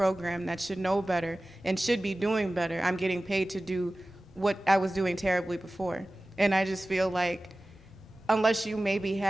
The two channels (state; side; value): normal; both; correlation 0.97